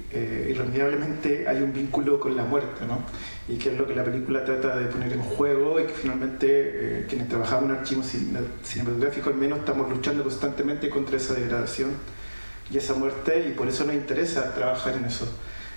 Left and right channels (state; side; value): inverted; both; correlation -1.00